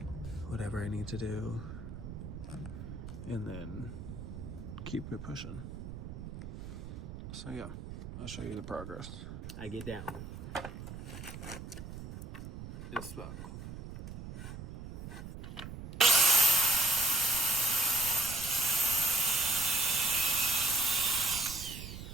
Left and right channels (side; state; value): right; noise; rumble, 10 dB below the sound